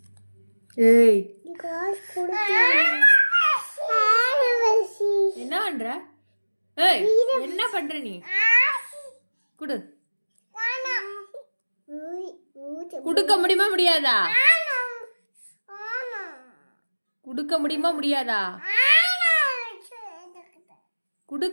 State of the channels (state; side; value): inverted; both; correlation -1.00